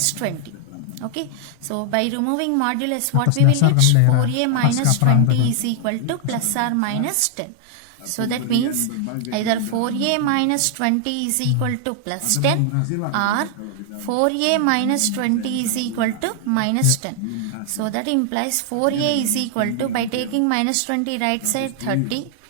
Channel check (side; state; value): both; different; correlation 0.00